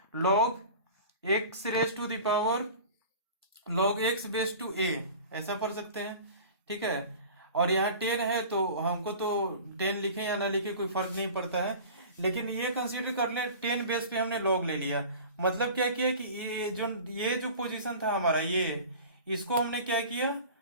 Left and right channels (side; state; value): both; inverted; correlation -0.39